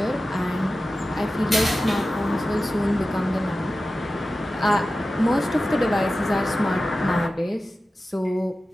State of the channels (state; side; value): normal; both; correlation 0.94